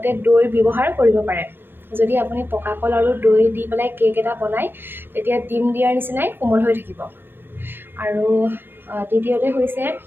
দৈ ব্যৱহাৰ কৰিব পাৰে। যদি আপুনি পকা কল আৰু দৈ দি পেলাই কেক এটা বনায়, তেতিয়া ডিম দিয়াৰ নিচিনাই কোমল হৈ থাকিব। আৰু দ্বিতীয়তে হৈছে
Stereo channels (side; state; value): left; late; 0.10 ms